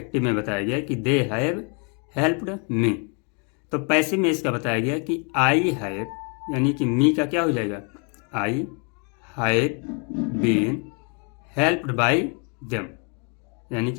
में बताया गया कि दे हैव हेल्प्ड मी। तो पैसिव में इसका बताया गया कि आई हैव, यानी कि मी का क्या हो जाएगा, I have been helped by them, यानी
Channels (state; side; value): quieter; right; 37.0 dB